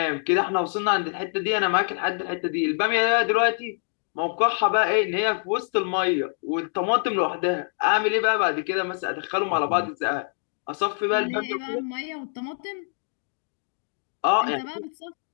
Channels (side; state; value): right; silent; 59 dB below the other